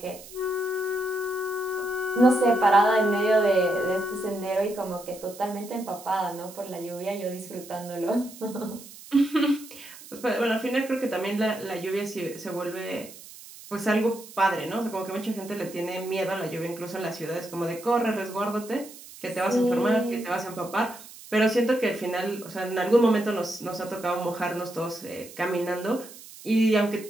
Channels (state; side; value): noise; right; hiss, 17 dB below the sound